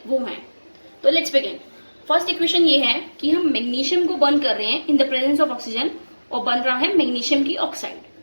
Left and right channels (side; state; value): both; inverted; correlation -1.00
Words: वो हैं। तो लेट्स बिगिन। फर्स्ट इक्वेशन ये है कि हम मैग्नीशियम को बर्न कर रहे हैं in the presence of oxygen, और बन रहा है मैग्नीशियम की ऑक्साइड।